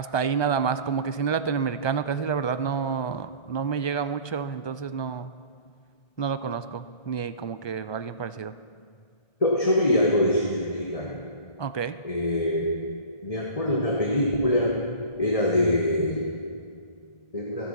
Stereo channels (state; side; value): late; right; 1.2 ms